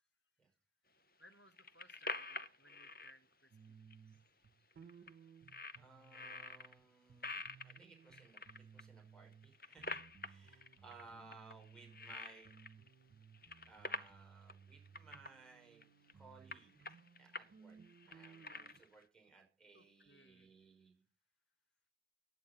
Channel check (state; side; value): normal; both; correlation 0.09